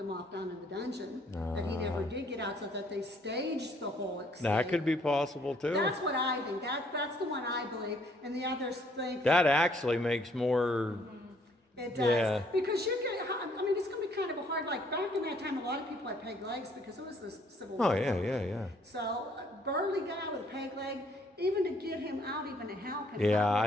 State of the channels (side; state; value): both; normal; correlation 0.64